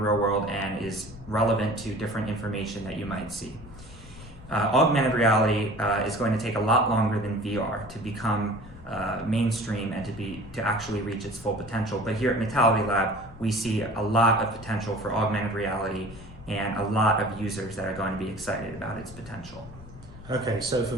world and is relevant to different information that you might see. Augmented reality is going to take a lot longer than VR to become mainstream and to actually reach its full potential. But here at Metality Lab, we see a lot of potential for augmented reality and a lot of users that are going to be excited about its potential. Okay, so for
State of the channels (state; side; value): noise; left; rumble, 17 dB below the sound